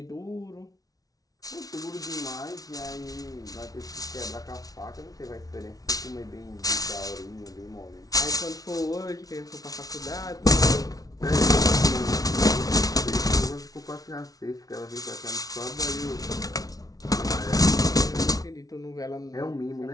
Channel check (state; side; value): late; right; 0.18 ms